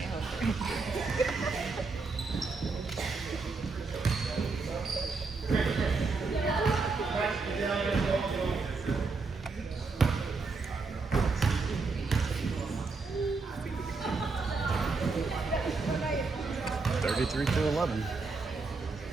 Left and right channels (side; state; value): left; quieter; 4.1 dB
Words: 3 to 11.